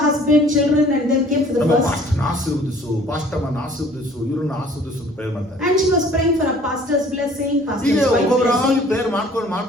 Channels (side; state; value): both; normal; correlation 0.53